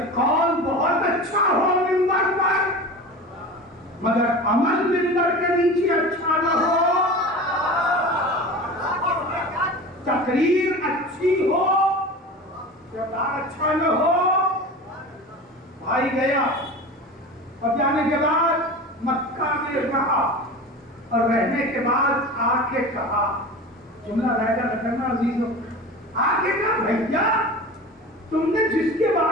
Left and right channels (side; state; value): both; normal; correlation 0.33